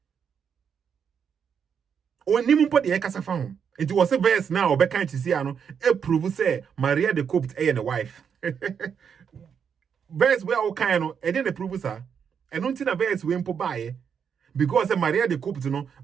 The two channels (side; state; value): left; quieter; 7.2 dB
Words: Onim po de ekasa fa hum. It was a verse now, or can't you see, prove say Mariyah the cooked and the wife. Verse where all kind of, and then the prove her. And don't think a verse we impo buy because Mariyah the cooked,